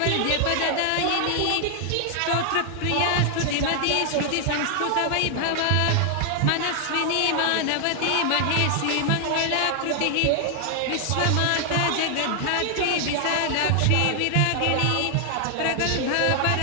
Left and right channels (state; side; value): different; both; correlation 0.00